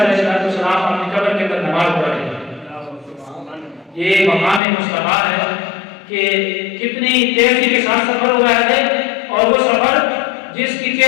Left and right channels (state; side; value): drops out; right; at 4.6 s